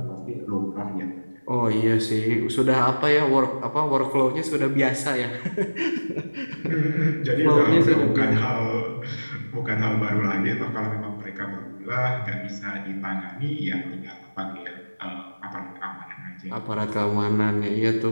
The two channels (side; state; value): both; inverted; correlation -1.00